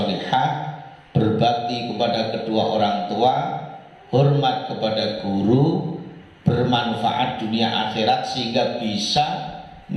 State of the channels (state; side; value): identical; both; correlation 1.00